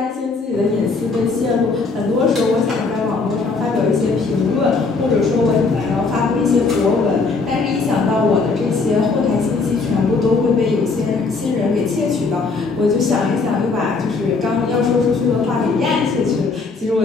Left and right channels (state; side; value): quieter; right; 4.2 dB